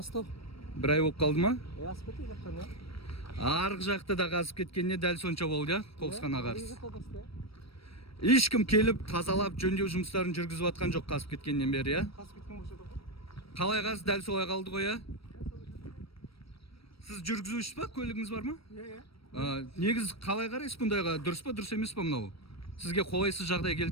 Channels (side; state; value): right; late; 0.75 ms